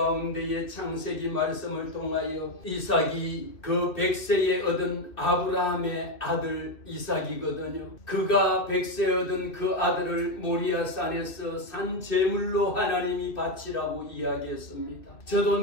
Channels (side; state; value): right; late; 2.4 ms